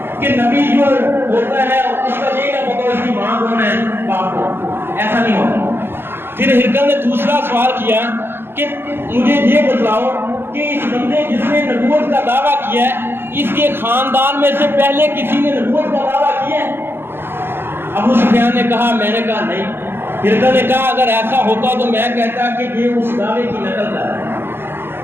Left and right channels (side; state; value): left; late; 0.11 ms